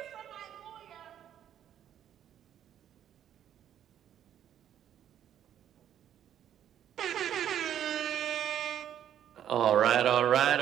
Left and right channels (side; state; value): left; quieter; 10.2 dB